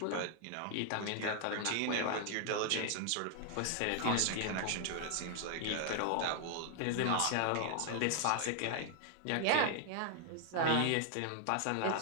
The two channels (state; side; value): different; both; correlation 0.00